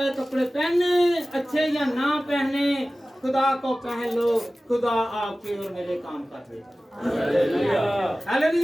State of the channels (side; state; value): both; normal; correlation 0.96